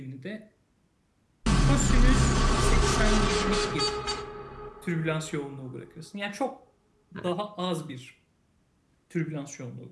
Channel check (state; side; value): identical; both; correlation 1.00